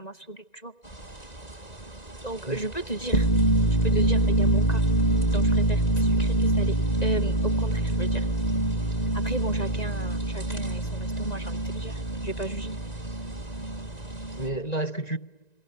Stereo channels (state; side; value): late; right; 1.9 ms